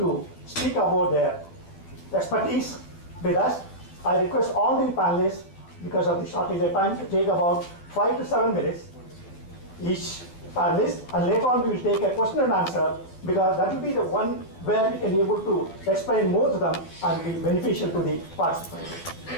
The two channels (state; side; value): late; right; 12 ms